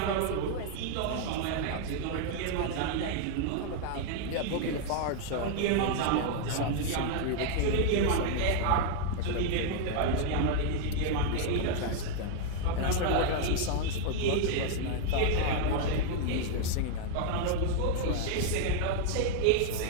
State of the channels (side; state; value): both; different; correlation 0.00